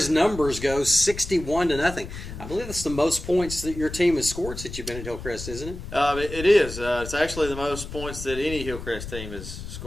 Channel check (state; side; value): noise; left; rumble, 10 dB below the sound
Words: numbers go, 61-0. I believe that's the most points that your team has scored since you've been at Hillcrest, isn't it? It is. It's actually the most points that any Hillcrest team has